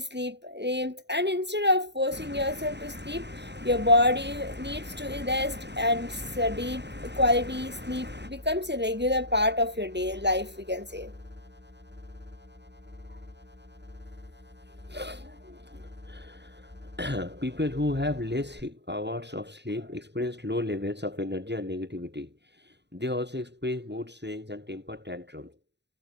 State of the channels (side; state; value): left; late; 0.50 ms